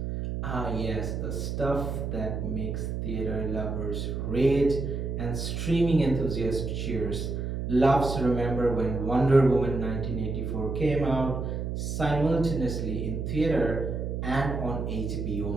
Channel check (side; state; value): right; noise; hum, 3 dB below the sound